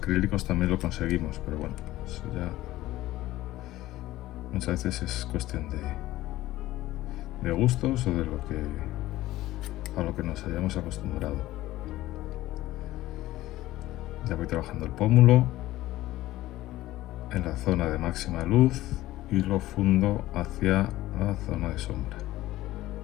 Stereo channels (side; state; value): right; quieter; 16.1 dB